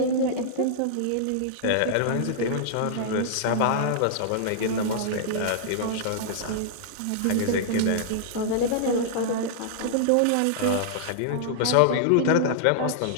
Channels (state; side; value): different; both; correlation -0.01